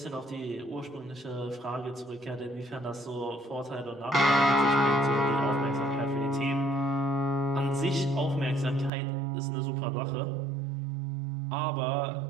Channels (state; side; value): drops out; left; at 8.9 s